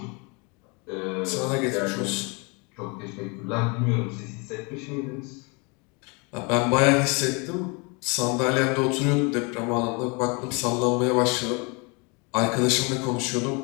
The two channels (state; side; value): quieter; right; 30.9 dB